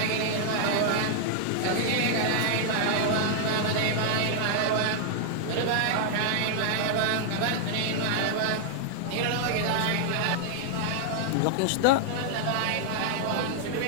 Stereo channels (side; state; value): both; different; correlation 0.00